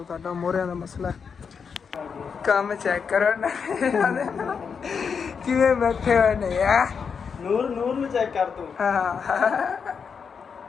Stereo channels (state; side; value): quieter; right; 6.2 dB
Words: ਤੁਹਾਡਾ ਮੋਰਿਆਂ ਦਾ ਮਸਲਾ ਕੰਮ ਚੈੱਕ ਕਰੋ ਨਾ ਕਿਵੇਂ ਬੈਠੇ ਹੋਏ ਨੇ ਆ ਨੂਰ ਨੂੰ ਚੈੱਕ ਕਰ ਤੂੰ ਹਾਂ